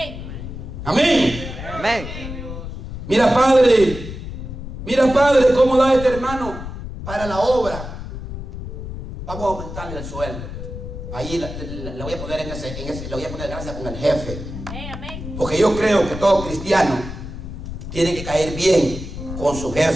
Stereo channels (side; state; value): left; noise; rumble, 9 dB below the sound